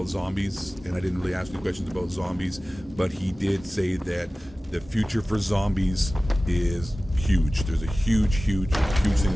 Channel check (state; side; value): normal; both; correlation 0.97